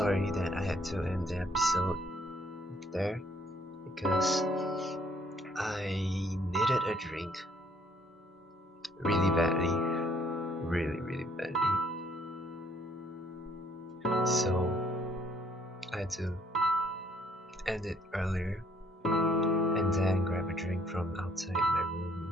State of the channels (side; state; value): both; normal; correlation 0.63